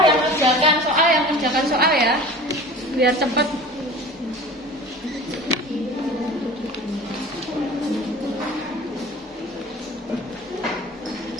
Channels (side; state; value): both; normal; correlation 0.39